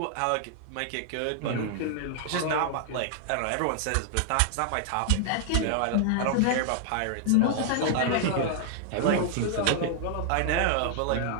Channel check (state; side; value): different; both; correlation -0.01